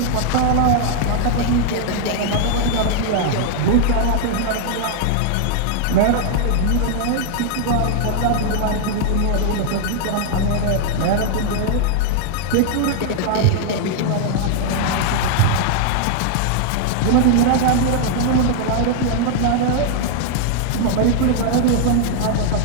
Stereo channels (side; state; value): both; different; correlation -0.01